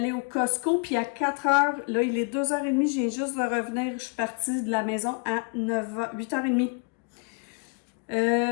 au Costco, puis à 4h, là, il est 2h30, j'ai juste de revenir. Je suis partie de la maison à 8h30.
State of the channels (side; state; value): right; quieter; 34.3 dB